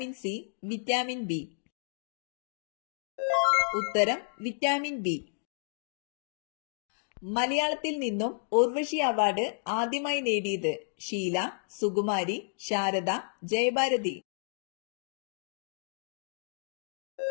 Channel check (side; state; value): right; silent; digital silence